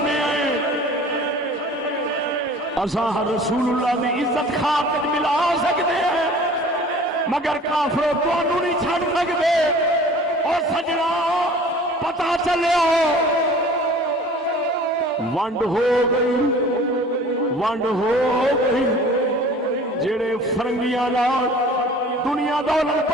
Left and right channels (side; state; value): both; normal; correlation 0.46